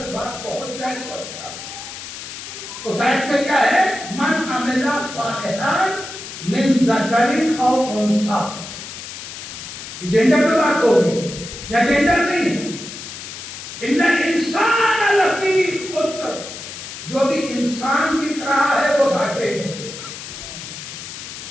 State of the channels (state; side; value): noise; left; hiss, 11 dB below the sound